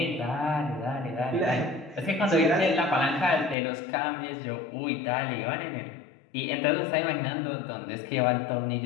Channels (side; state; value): right; drops out; at 3.6 s